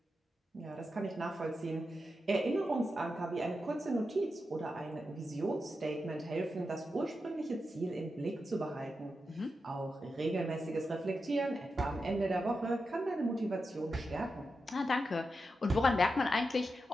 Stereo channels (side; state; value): both; normal; correlation 0.89